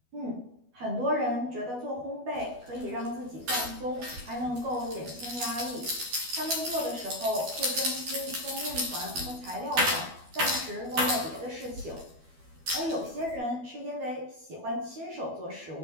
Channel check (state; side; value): late; left; 12 ms